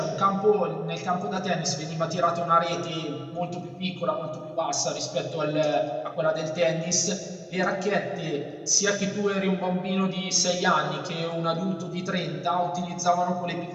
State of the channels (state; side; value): identical; both; correlation 1.00